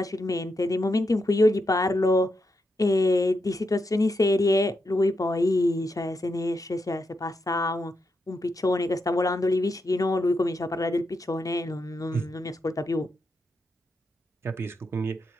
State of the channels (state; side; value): normal; both; correlation 0.84